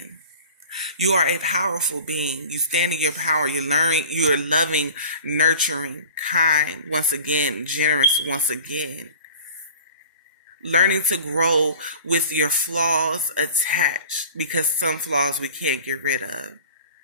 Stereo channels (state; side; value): inverted; both; correlation -0.42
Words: You are a powerful being. You stand in your power. You're loving, nurturing, kind, once again, generous, once again. Learning to grow with your flaws attached, because some flaws we can't get rid of.